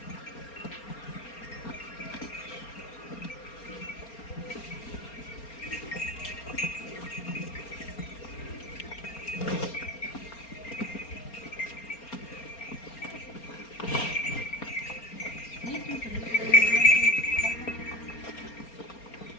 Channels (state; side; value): late; right; 4.3 ms